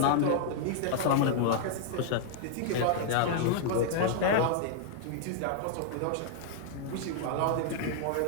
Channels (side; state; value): both; different; correlation -0.01